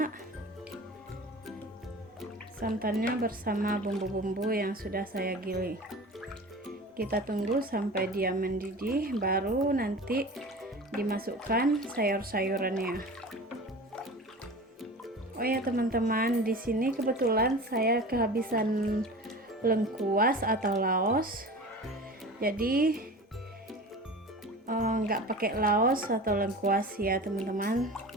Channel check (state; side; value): normal; both; correlation 0.36